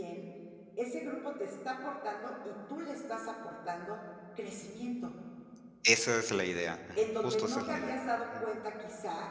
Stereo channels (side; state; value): both; identical; correlation 1.00